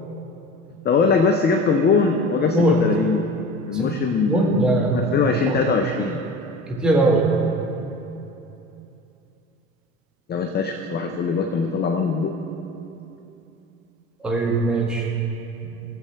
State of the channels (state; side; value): normal; both; correlation 0.37